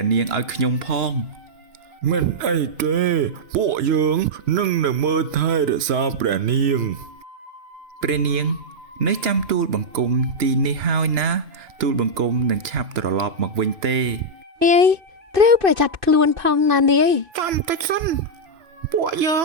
ះនាងឲ្យខ្ញុំផងមិនអីទេពួកយើងនឹងមើលថែរក្សាព្រះនាងនៅចាំទូលបង្គំទីនេះហើយណាទូលបង្គំនឹងឆាប់ត្រឡប់មកវិញទេត្រូវប្រយ័ត្នខ្លួនផងណានាយចាំតិចសិនពួកយើង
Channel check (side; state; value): left; late; 2.6 ms